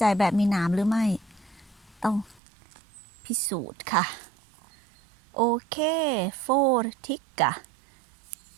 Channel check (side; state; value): left; drops out; at 2.4 s